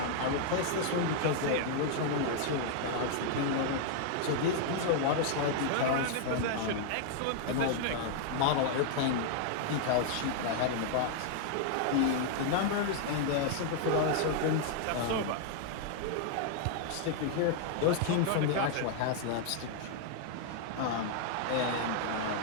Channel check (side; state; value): both; different; correlation 0.00